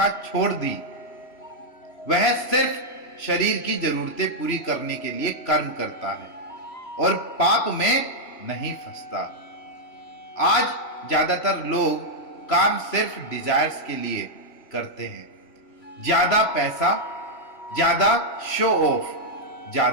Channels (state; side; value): late; right; 3.0 ms